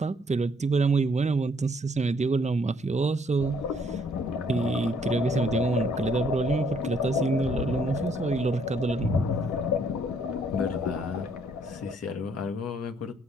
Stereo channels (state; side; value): normal; both; correlation 0.66